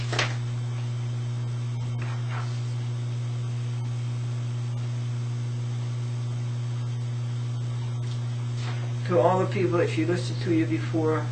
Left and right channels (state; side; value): identical; both; correlation 1.00